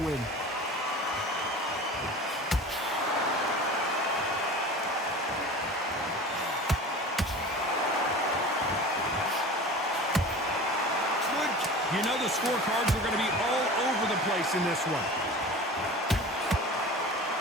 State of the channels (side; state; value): both; normal; correlation 0.37